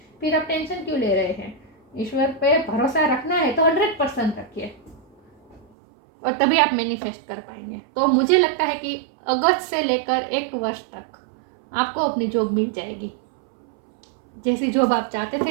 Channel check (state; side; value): drops out; left; at 5.7 s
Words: फिर आप टेंशन क्यों ले रहे हैं? ईश्वर पे भरोसा रखना है तो 100% रखिए, और तभी आप मैनिफेस्ट कर पाएंगे। तो मुझे लगता है कि अगस्त से लेकर 1 वर्ष तक आपको अपनी जॉब मिल जाएगी। जैसी जॉब आप चाहते